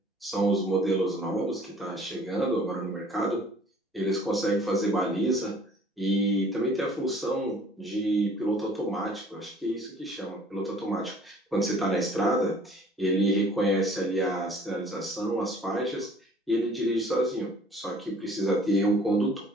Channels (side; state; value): both; normal; correlation 0.53